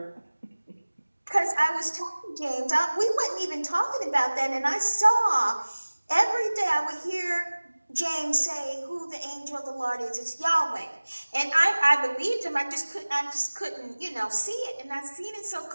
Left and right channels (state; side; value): inverted; both; correlation -1.00